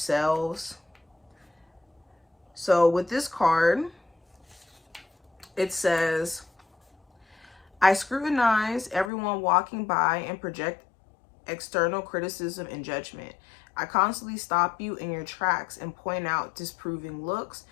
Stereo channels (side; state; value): right; drops out; at 9.1 s